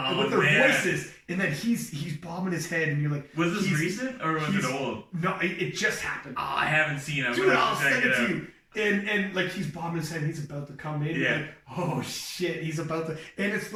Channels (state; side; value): identical; both; correlation 1.00